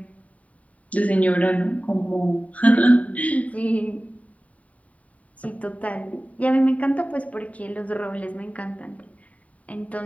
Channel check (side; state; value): right; late; 0.068 ms